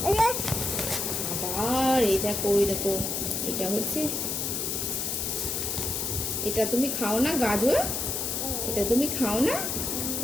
আবার এই দেখো, এই দেখো, এটা হচ্ছে, এটা তুমি খাও না গাজর? এটা তুমি খাও না?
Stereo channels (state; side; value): noise; left; hiss, 1 dB below the sound